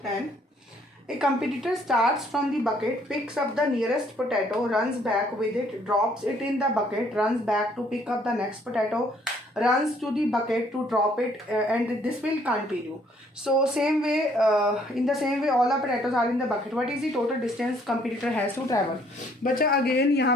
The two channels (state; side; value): normal; both; correlation 0.64